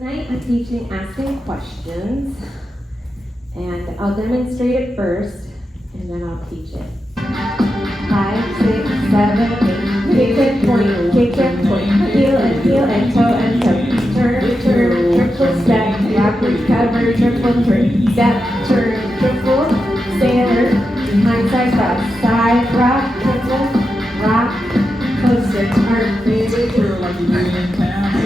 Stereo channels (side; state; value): both; normal; correlation 0.88